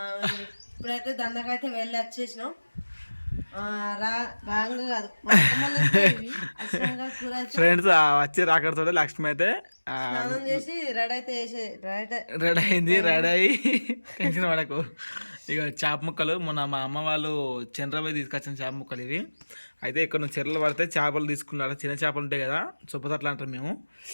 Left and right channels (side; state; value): both; inverted; correlation -1.00